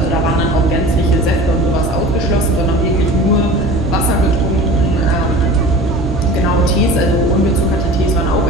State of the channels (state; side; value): normal; both; correlation 0.39